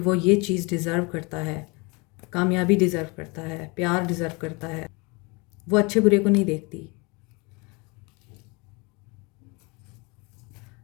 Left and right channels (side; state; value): right; quieter; 28.2 dB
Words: ये चीज़ डिज़र्व करता है, कामयाबी डिज़र्व करता है, प्यार डिज़र्व करता है। वो अच्छे बुरे को नहीं देखती,